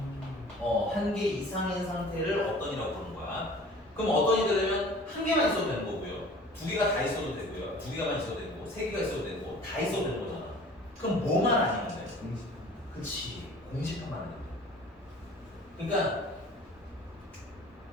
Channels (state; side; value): normal; both; correlation 0.46